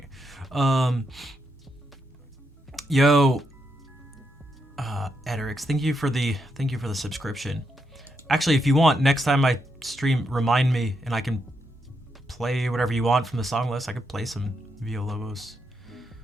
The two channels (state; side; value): normal; both; correlation 0.81